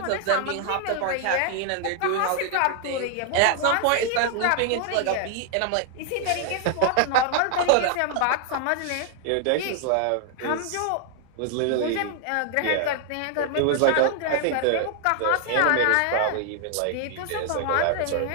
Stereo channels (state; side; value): different; both; correlation 0.00